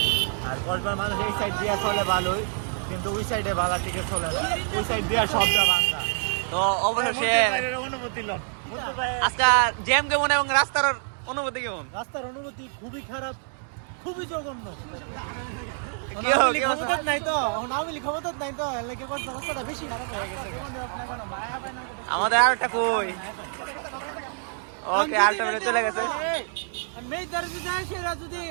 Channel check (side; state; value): left; silent; 61 dB below the other